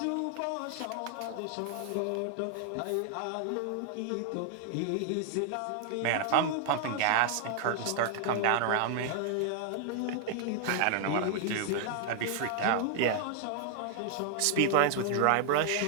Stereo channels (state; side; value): different; both; correlation 0.00